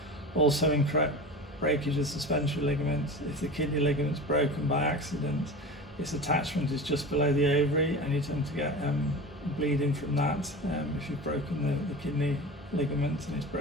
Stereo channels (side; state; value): both; normal; correlation 0.31